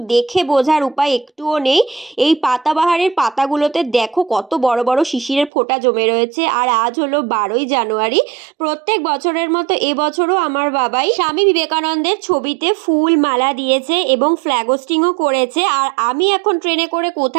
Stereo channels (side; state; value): left; drops out; at 5.5 s